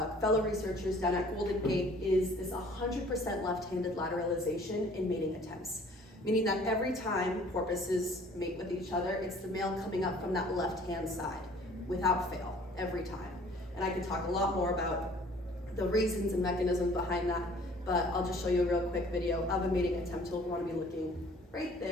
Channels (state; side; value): normal; both; correlation 0.54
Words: fellow researchers down at Golden Gate is this 100% left-handed lateralization in mating attempts, meaning that every time porpoises mate with each other, it's the male coming up from that left-hand side, without fail, every time. And I could talk a lot more about the reasons and mechanisms behind that, but I'll just show you a real quick video of a mating attempt. You'll want to be looking right